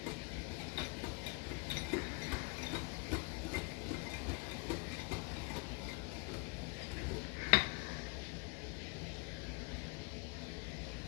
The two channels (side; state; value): right; quieter; 30.0 dB